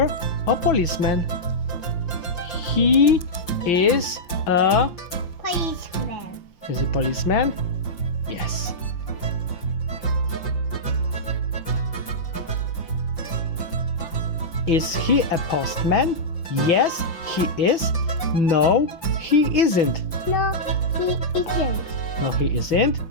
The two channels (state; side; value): late; right; 5.8 ms